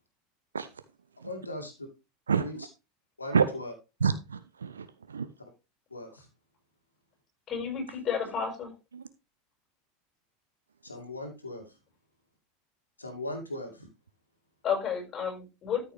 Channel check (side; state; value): both; inverted; correlation -0.34